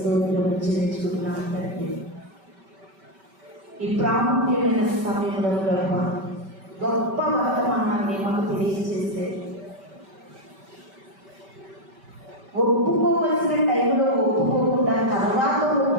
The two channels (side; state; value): left; late; 5.2 ms